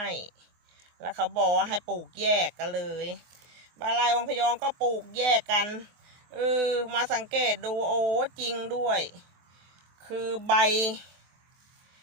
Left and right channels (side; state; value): left; late; 24 ms